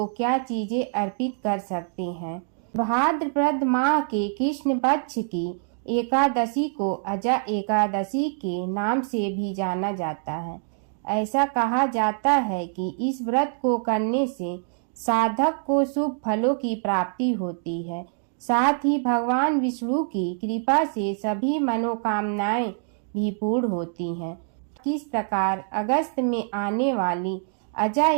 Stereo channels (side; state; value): left; silent; digital silence